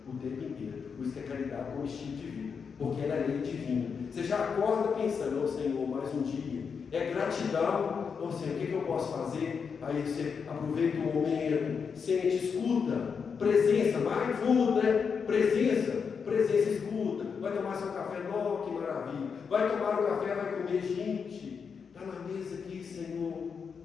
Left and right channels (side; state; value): right; quieter; 6.1 dB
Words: o tempo inteiro. Por isso que a caridade é um estilo de vida, porque ela é lei divina. Você já acorda pensando, Senhor, mais um dia. É gratidão, Senhor, o que eu posso fazer? Aí você aproveita o momento, sente, escuta, presença, mindful, né? Presença, escuta. Vai tomar seu café, que maravilha. Vai tomar o café, vai comer, gente. Está na mesa aqui, Senhor.